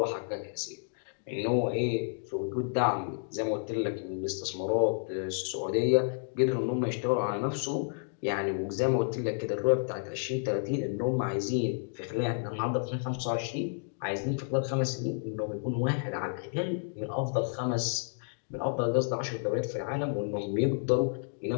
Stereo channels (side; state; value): right; silent; digital silence